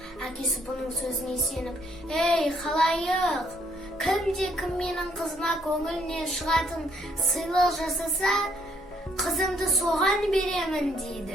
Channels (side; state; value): both; normal; correlation 0.68